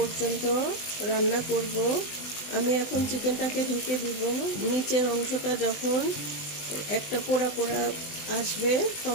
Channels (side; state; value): right; late; 20 ms